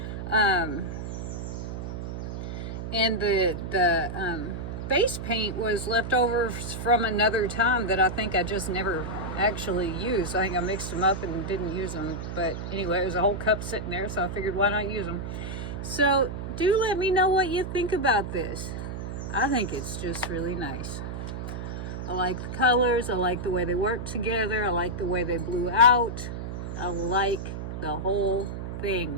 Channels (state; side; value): noise; right; hum, 6 dB below the sound